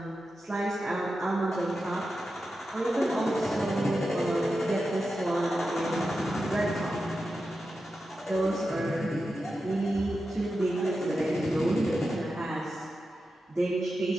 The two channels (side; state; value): both; normal; correlation 0.90